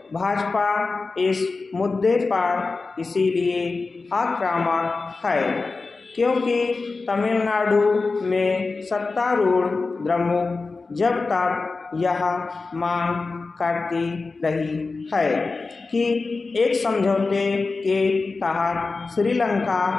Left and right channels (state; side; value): quieter; right; 3.9 dB